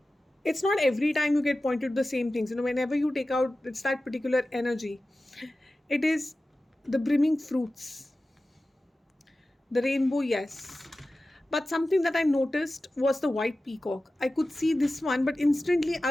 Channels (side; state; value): both; normal; correlation 0.95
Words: it's not every time you get pointed to the same things. Whenever you take out, it's that particular energy. It is the brimming fruits, the rainbow, yes. But something that I noticed was the white peacock. I could see this one, but instantly